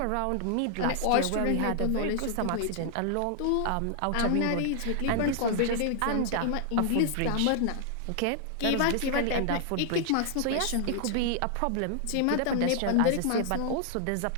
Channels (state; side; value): different; both; correlation 0.00